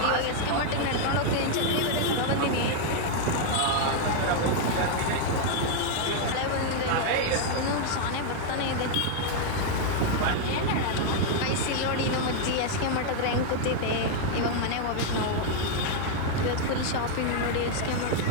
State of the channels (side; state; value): both; different; correlation 0.00